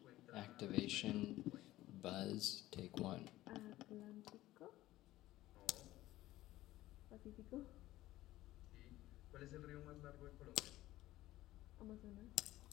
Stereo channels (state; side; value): quieter; right; 16.0 dB